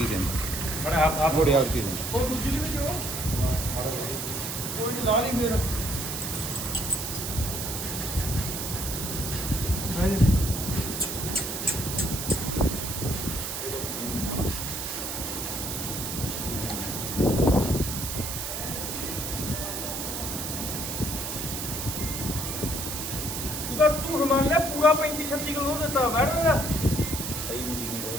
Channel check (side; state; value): right; noise; hiss, 4 dB below the sound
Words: ಇದೆ ಅಂತ, ನೋಡಿ ಯಾವ ರೀತಿ ಇದೆ. ਝੂਠ ਮੰਨ ਲਿਆ ਪੂਰਾ 35-36 ਕਿਲੋ ਦਿੱਤਾ ਬੈਠ ਦਾ